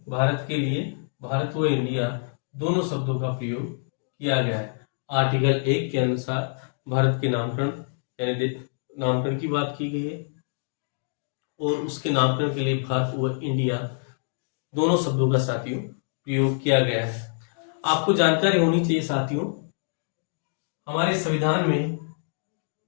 भारत के लिए भारत व इंडिया दोनों शब्दों का प्रयोग किया गया है। आर्टिकल 1 के अनुसार भारत के नामकरण यानी नामकरण की बात की गई है और उसके नामकरण के लिए भारत व इंडिया दोनों शब्दों का साथियों प्रयोग किया गया है। आपको जानकारी होनी चाहिए साथियों, हमारे संविधान में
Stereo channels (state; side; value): silent; right; digital silence